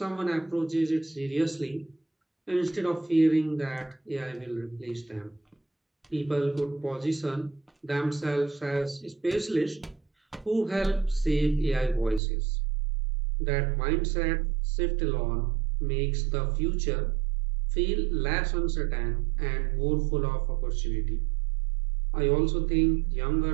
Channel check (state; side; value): drops out; left; at 12.2 s